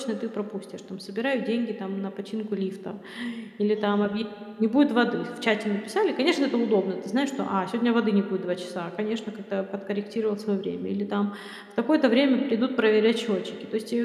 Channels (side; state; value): both; identical; correlation 1.00